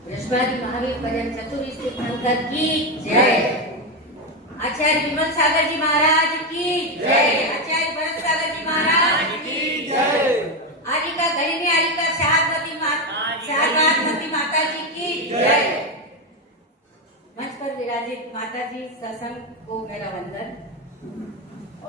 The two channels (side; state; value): both; normal; correlation 0.11